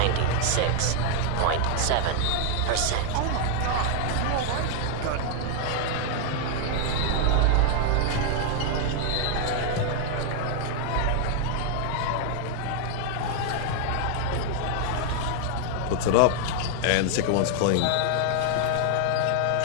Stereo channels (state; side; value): different; both; correlation 0.00